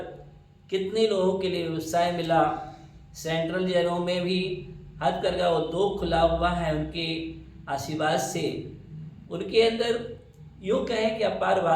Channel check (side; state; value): both; identical; correlation 1.00